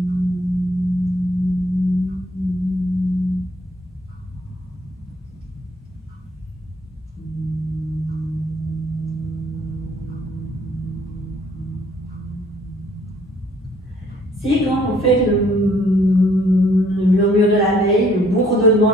Si quand vous faites le murmure de l'abeille, le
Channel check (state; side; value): normal; both; correlation 0.62